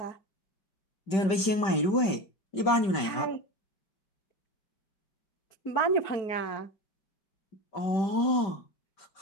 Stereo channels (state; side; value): late; right; 5.2 ms